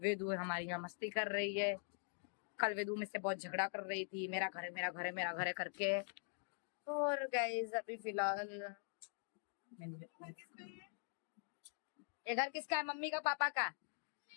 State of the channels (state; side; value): silent; right; digital silence